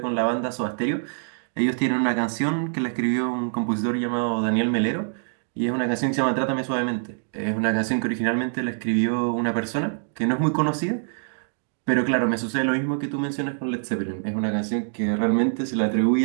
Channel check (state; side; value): silent; left; digital silence